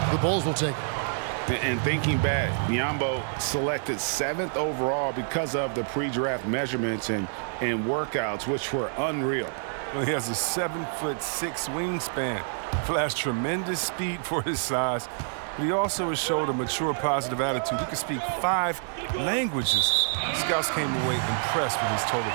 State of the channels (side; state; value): left; silent; digital silence